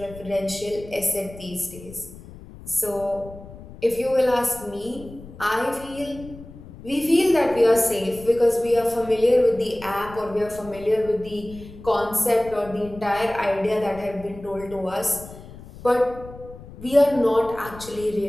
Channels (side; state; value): left; noise; rumble, 17 dB below the sound